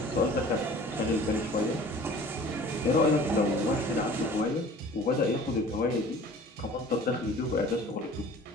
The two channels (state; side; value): normal; both; correlation 0.46